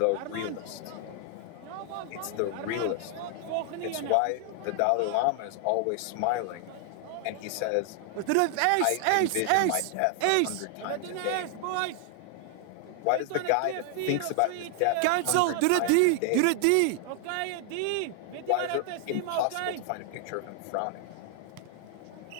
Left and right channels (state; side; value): different; both; correlation 0.00